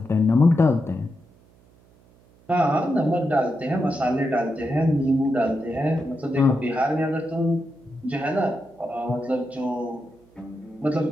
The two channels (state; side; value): noise; right; hum, 29 dB below the sound